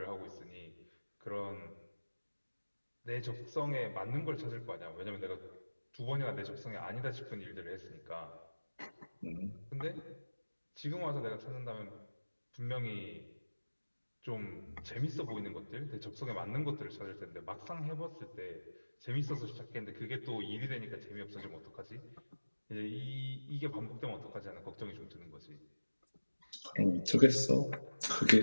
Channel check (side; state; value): both; inverted; correlation -1.00